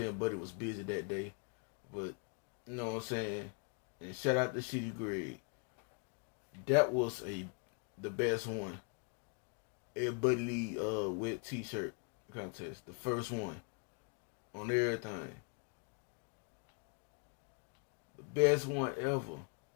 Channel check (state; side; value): quieter; right; 35.7 dB